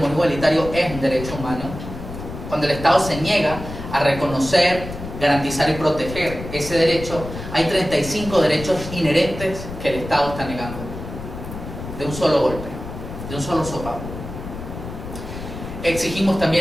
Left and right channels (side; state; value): left; noise; rumble, 10 dB below the sound